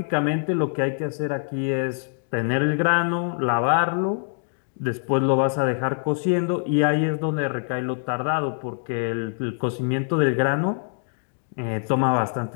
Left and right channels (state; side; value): silent; right; 62 dB below the other